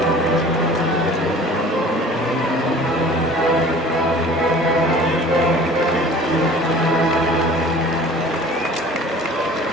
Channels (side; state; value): both; normal; correlation 0.46